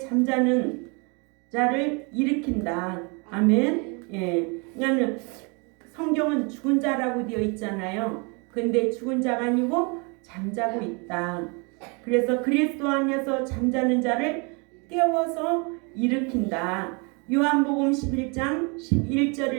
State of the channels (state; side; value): quieter; left; 32.2 dB